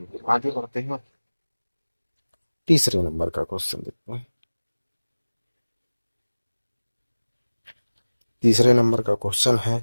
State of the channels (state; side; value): inverted; both; correlation -1.00